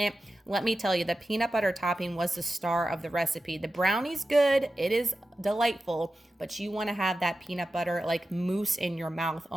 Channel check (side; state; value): both; normal; correlation 0.93